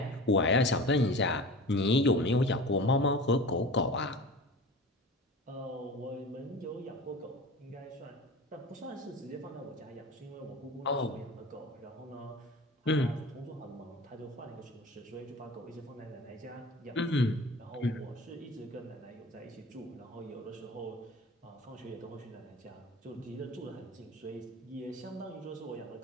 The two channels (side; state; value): both; normal; correlation 0.36